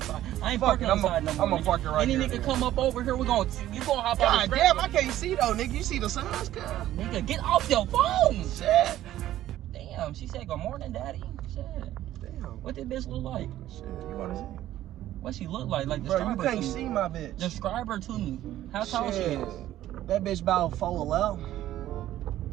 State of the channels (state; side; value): quieter; left; 13.4 dB